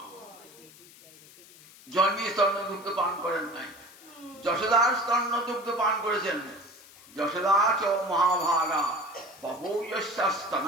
জন্মী স্তন্য দুগ্ধ পান করেন নাই, যশোদার স্তন্য দুগ্ধ পান করেছেন। যশোদা চ মহাভাগা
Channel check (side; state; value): left; noise; hiss, 22 dB below the sound